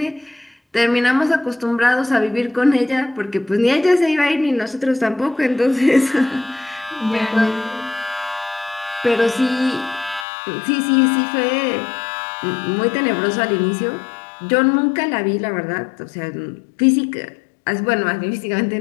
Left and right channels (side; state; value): right; drops out; at 10.2 s